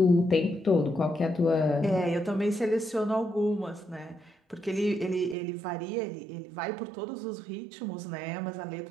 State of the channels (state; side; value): drops out; left; at 5.4 s